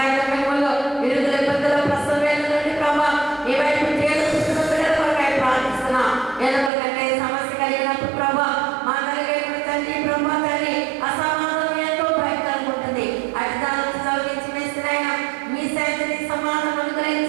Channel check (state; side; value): drops out; left; at 6.7 s